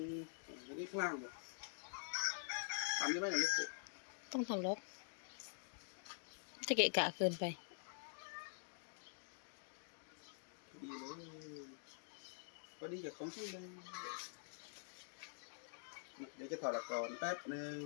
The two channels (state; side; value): silent; right; digital silence